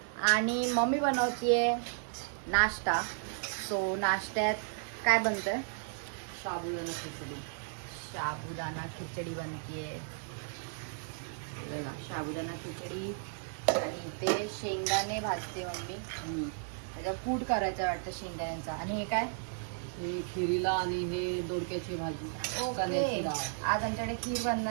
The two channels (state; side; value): silent; left; digital silence